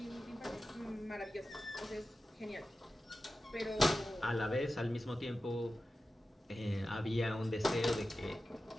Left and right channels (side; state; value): both; normal; correlation 0.93